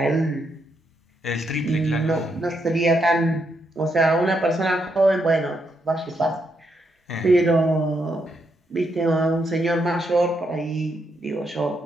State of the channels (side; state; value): both; normal; correlation 0.79